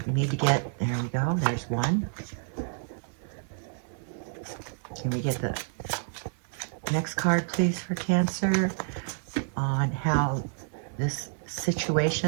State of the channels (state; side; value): silent; left; 56 dB below the other